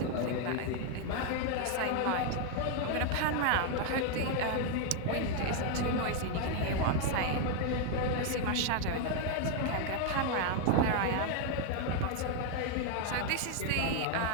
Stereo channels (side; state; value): both; different; correlation 0.01